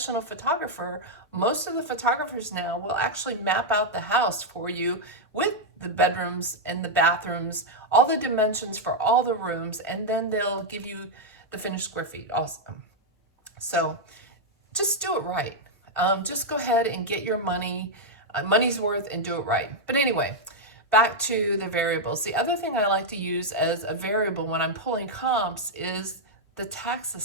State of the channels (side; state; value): both; normal; correlation -0.02